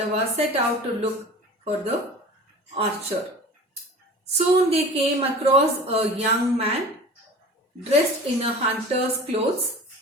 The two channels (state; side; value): normal; both; correlation 0.39